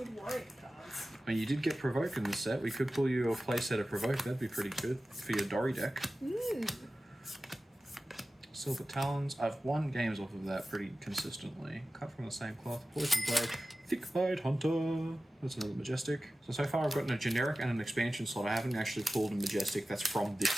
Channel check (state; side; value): normal; both; correlation 0.95